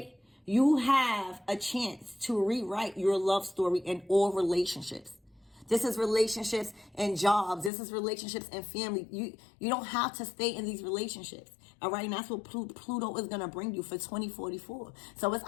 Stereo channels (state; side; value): drops out; right; at 7.7 s